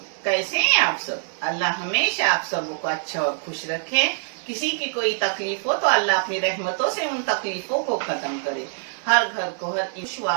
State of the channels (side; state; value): left; silent; 63 dB below the other